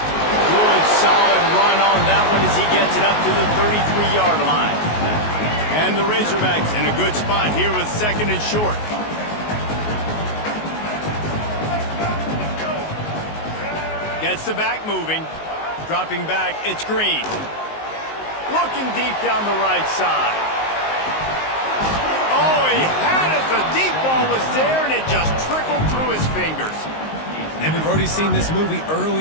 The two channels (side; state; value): right; late; 19 ms